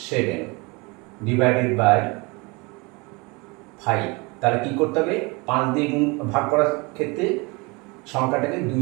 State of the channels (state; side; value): quieter; left; 27.2 dB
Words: 7 ডিভাইডেড বাই 5। তাহলে কি করতে হবে? 5 দিয়ে গুণ ভাগ করার ক্ষেত্রে সংখ্যাটাকে 2